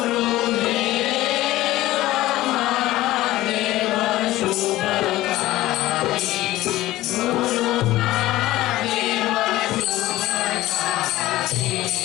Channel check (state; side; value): quieter; right; 16.4 dB